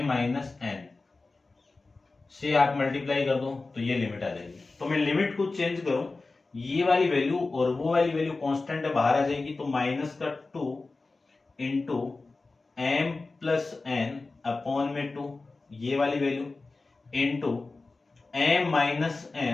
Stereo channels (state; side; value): quieter; right; 3.6 dB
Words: एन से आप मल्टीप्लाई कर दो तो ये लिमिट आ जाएगी। तो मैं लिमिट को चेंज करूं, ये वाली वैल्यू और वो वाली वैल्यू कांस्टेंट है, बाहर आ जाएगी, तो -2 into m plus n upon में 2, ये वाली value into m minus